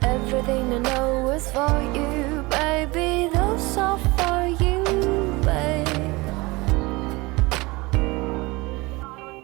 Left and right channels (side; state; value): left; quieter; 23.5 dB